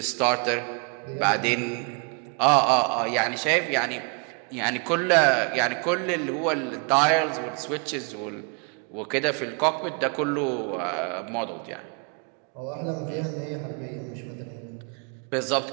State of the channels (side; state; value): left; quieter; 36.5 dB